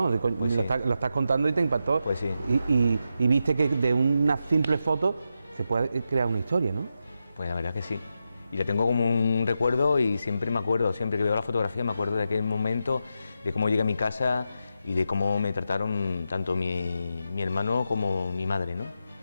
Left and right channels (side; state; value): both; inverted; correlation -0.87